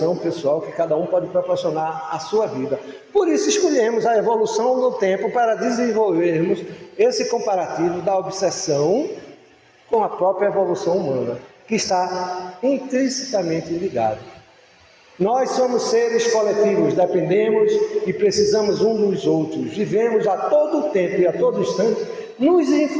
pessoal que cada um pode proporcionar à sua vida. Por isso escolhemos a evolução no tempo para desenvolvermos esse comparativo da obsessão com a própria evolução humana, que está intrinsecamente ligada. Nós somos seres coletivos, dependemos e precisamos um dos outros, vivemos a todo tempo e a todo instante nos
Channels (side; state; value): both; identical; correlation 1.00